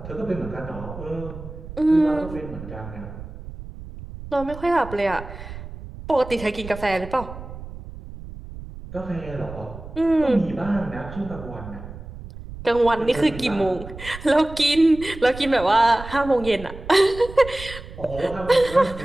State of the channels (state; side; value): noise; right; rumble, 13 dB below the sound